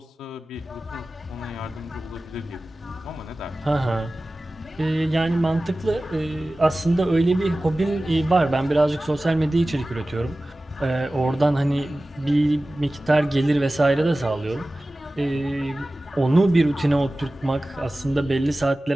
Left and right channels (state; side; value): normal; both; correlation 0.96